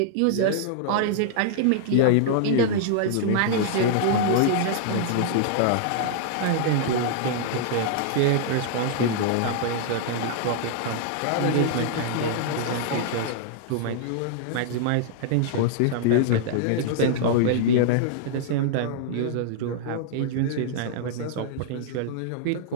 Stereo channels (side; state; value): both; different; correlation -0.01